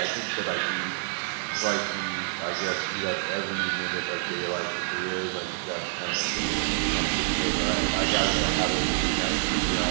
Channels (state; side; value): silent; left; 56 dB below the other